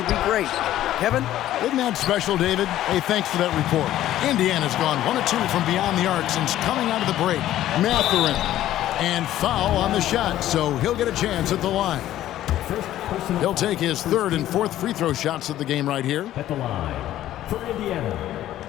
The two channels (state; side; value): quieter; right; 13.2 dB